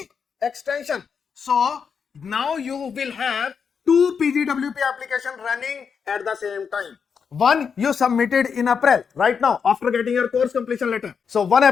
extension. So now you will have two PGWP application running at the same time. One you submitted in April, right now, after getting your course completion letter. So one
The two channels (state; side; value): quieter; right; 6.4 dB